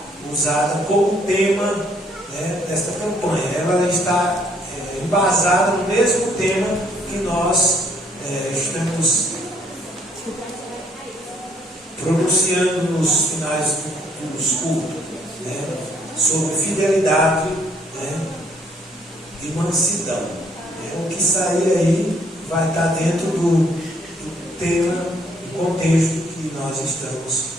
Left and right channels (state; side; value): normal; both; correlation 0.67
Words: usada como tema desta campanha. Ela está embasada no mesmo tema que nós estamos pronunciando nos finais dos cultos. né, sobre fidelidade, né, e mansidão. O que sair aí vai estar dentro do tema, do contexto que nós estamos